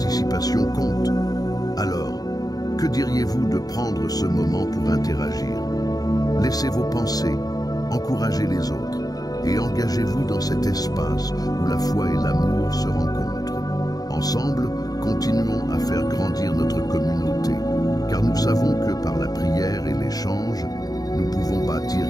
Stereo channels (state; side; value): late; right; 0.18 ms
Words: compte. Alors, que diriez-vous de prendre ce moment pour interagir? Laissez vos pensées, encouragez les autres et engagez-vous dans cet espace où la foi et l'amour se rencontrent. Ensemble, continuons à faire grandir notre communauté, car nous savons que par la prière et l'échange, nous pouvons bâtir